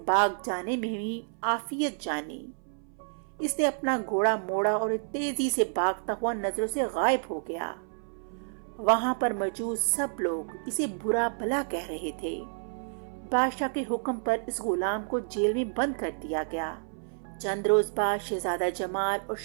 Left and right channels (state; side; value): silent; left; 58 dB below the other